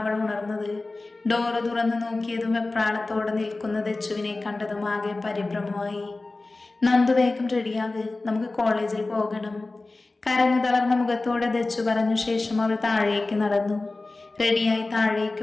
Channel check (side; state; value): right; quieter; 3.2 dB